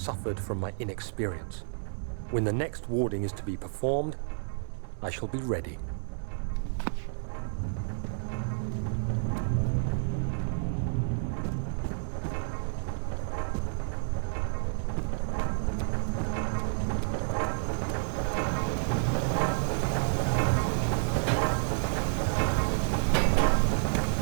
from my inexperience. When the next warding is to be performed, I shall be ready.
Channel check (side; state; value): left; silent; digital silence